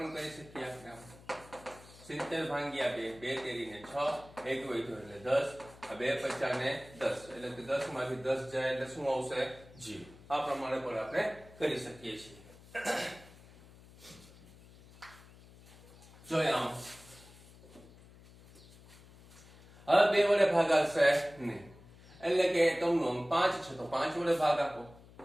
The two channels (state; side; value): noise; left; hum, 22 dB below the sound